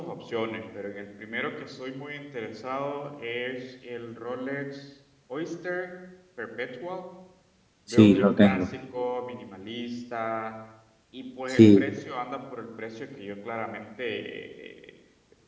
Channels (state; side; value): identical; both; correlation 1.00